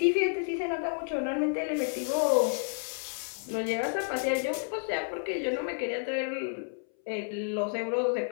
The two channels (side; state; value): right; silent; 58 dB below the other